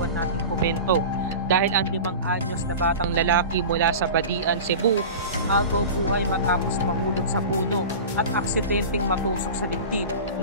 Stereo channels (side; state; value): both; inverted; correlation -0.32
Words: nating komento dahil ang 5 anyos na batang lalaki mula sa Badian, Cebu, agaw buhay matapos mahulog sa puno at aksidenteng matusok sa dibdib